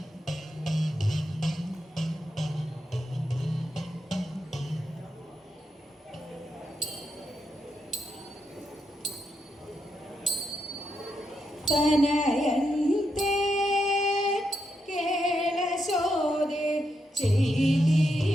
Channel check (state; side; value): normal; both; correlation 0.82